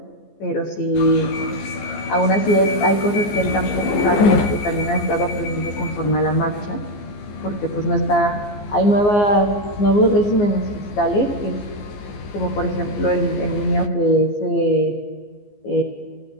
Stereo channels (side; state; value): right; late; 15 ms